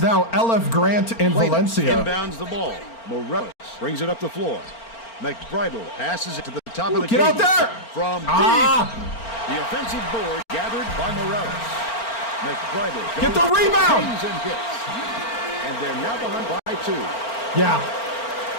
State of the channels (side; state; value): right; late; 4.4 ms